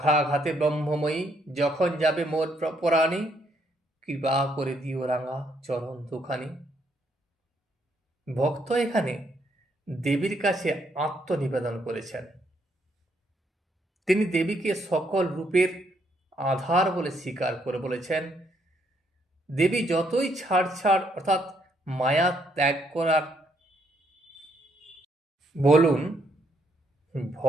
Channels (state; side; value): normal; both; correlation 0.73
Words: ব্রহ্মময়ী যখন যাবে মোর পরাণী, কৃপা করে দিও রাঙা চরণ দুখানি। ভক্ত এখানে দেবীর কাছে আত্মনিবেদন করেছেন। তিনি দেবীকে সকল রূপের আধার বলে স্বীকার করে বলেছেন, দেবী যতই ছাড় অর্থাৎ মায়া ত্যাগ করার বলুন,